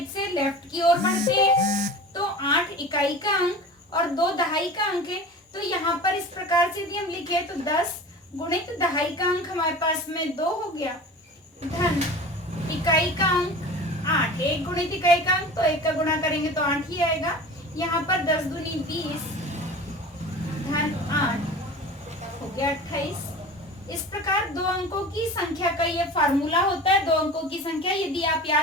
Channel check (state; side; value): normal; both; correlation 0.36